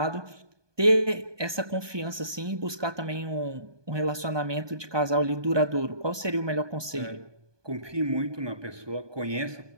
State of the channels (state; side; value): late; left; 1.2 ms